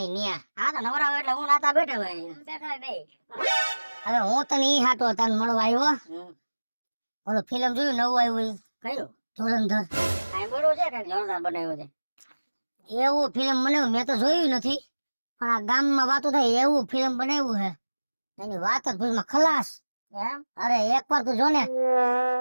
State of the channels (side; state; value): both; inverted; correlation -1.00